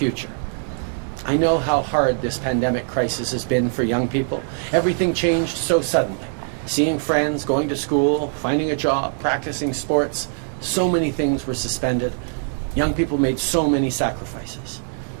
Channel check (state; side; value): silent; left; digital silence